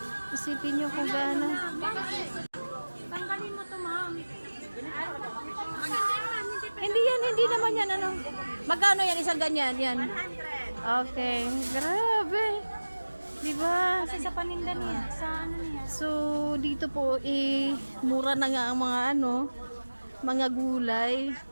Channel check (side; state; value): both; inverted; correlation -1.00